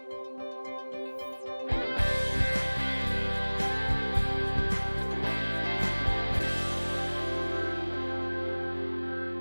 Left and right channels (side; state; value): both; inverted; correlation -1.00